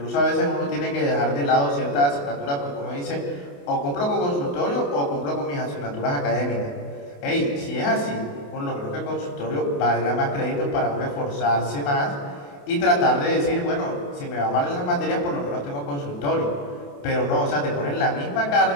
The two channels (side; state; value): right; late; 28 ms